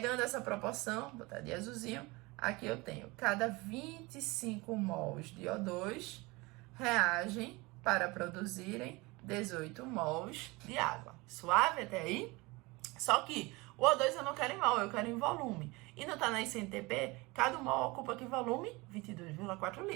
essa proporção, botar de azulzinho, aqui eu tenho cada 25 mols de O2 reagem para produzirem 18 mols de água. Suave até aí? Só que o O2 eu não quero em mol, eu quero em volume. E não tá na SNTP, cada mol ocupa que volume? 22,4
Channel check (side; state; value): left; quieter; 24.0 dB